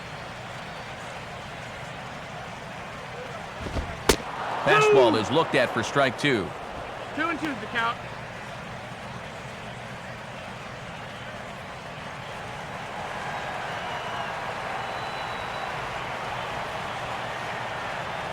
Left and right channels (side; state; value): both; identical; correlation 1.00